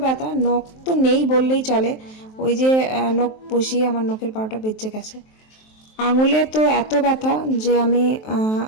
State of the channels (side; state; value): right; late; 23 ms